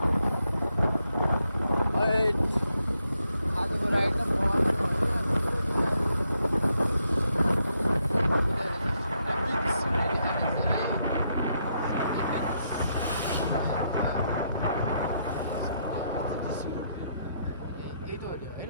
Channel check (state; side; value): inverted; both; correlation -0.78